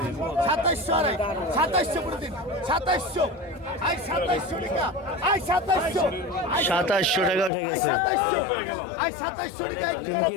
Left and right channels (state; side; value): drops out; right; at 7.5 s